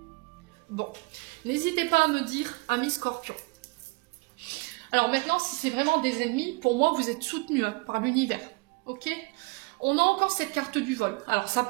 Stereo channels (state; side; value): quieter; left; 27.4 dB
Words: Bon, n'hésitez pas à me dire, amis Scorpion. Alors maintenant, si c'est vraiment des ennemis, pour moi, vous êtes soutenus hein, par l'univers. Ok? On a encore cette carte du vol. Alors, ça